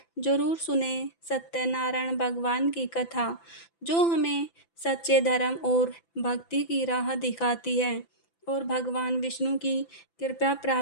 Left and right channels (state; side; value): late; right; 5.9 ms